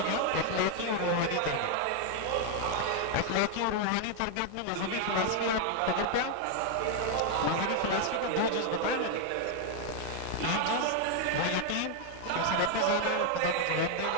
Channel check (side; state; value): both; different; correlation 0.01